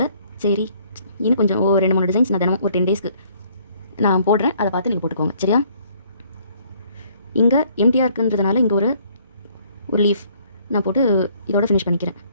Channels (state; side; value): inverted; both; correlation -0.62